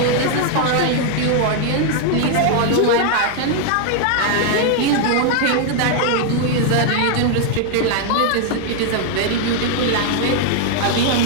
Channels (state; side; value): different; both; correlation 0.00